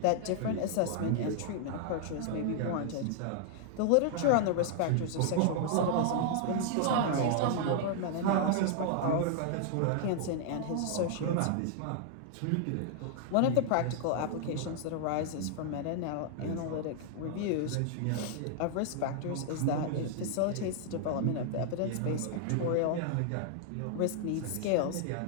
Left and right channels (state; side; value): different; both; correlation 0.00